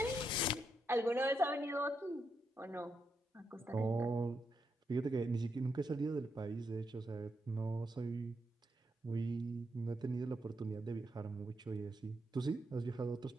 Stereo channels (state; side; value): normal; both; correlation 0.82